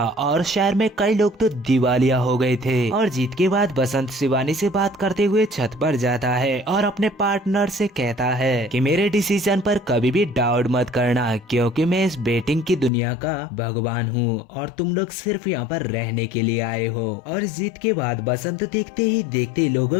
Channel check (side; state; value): right; drops out; at 12.9 s